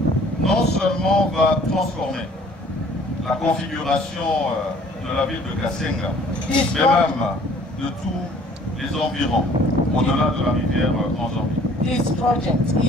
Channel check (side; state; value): both; normal; correlation 0.55